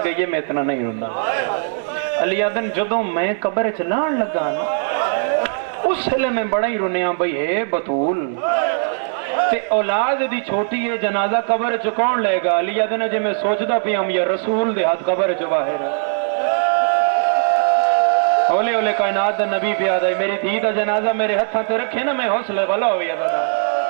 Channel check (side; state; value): left; silent; digital silence